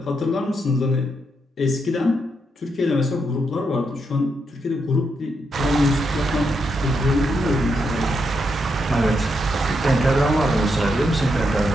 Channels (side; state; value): both; normal; correlation 0.81